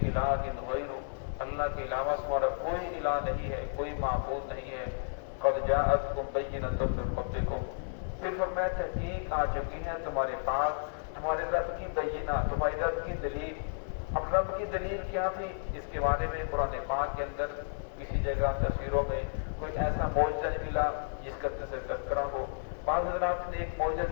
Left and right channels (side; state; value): right; silent; digital silence